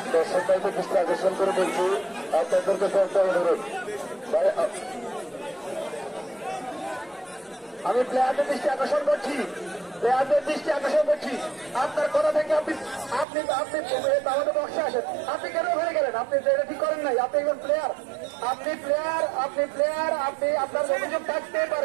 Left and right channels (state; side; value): drops out; left; at 13.2 s